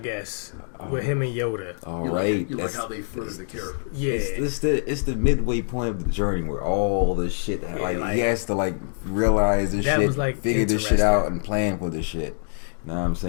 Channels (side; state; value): right; silent; digital silence